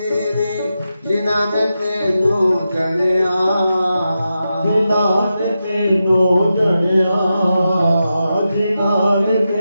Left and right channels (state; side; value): inverted; both; correlation -0.89